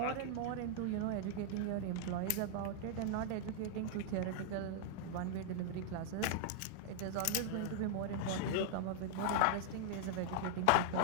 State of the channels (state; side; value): different; both; correlation -0.01